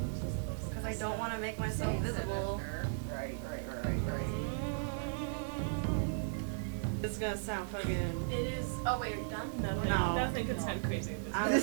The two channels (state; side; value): silent; left; digital silence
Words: Because I don't want to make myself visible. Right. This is gonna sound fucking. It is. Oh wait, are you done? No. Nothing could sound crazy at this I'm